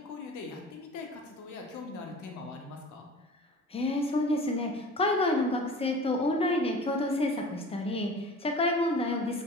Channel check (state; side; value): normal; both; correlation 0.40